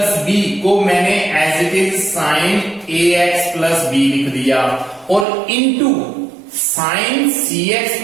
बी को मैंने as it is sine ax plus b लिख दिया और into sine cx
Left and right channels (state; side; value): drops out; left; at 5.2 s